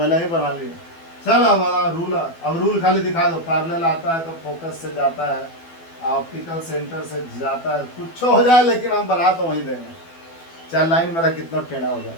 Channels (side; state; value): right; late; 12 ms